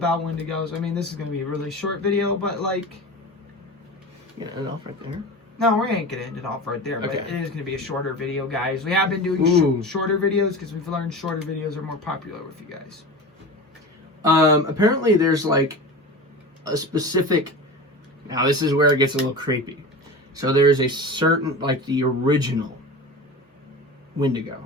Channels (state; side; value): normal; both; correlation 0.30